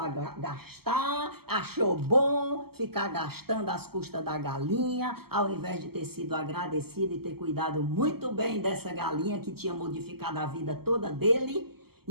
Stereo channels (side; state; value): left; late; 0.95 ms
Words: gastar, achou bom ficar gastando às custas da galinha, ao invés de ter sido agradecido e ter cuidado muito bem dessa galinha que tinha modificado a vida toda dele.